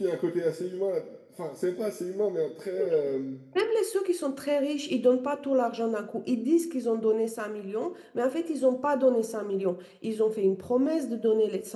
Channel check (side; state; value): both; identical; correlation 1.00